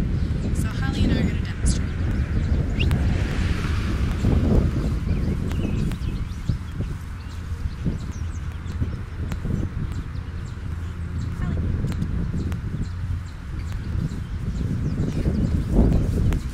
So Holly and I are going to demonstrate.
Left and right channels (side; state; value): both; identical; correlation 1.00